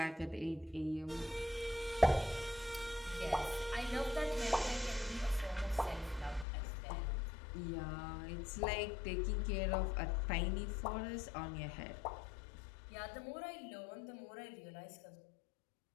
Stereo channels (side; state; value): right; drops out; at 6.5 s